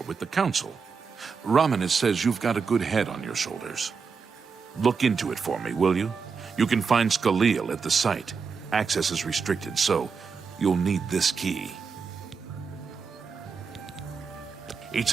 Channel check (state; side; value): quieter; left; 5.4 dB